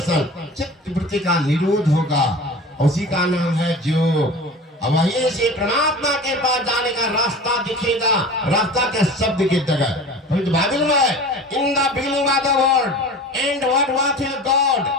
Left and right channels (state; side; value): normal; both; correlation 0.37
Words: चित्त वृत्ति का निरोध होगा, उसी का नाम है जो। अब वहीं से परमात्मा के पास जाने का रास्ता दिखेगा। रास्ता के शब्द की जगह बाइबल में in the beginning of the word and what was God